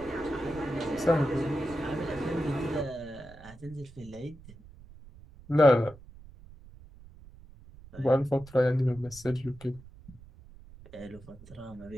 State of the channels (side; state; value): right; noise; rumble, 20 dB below the sound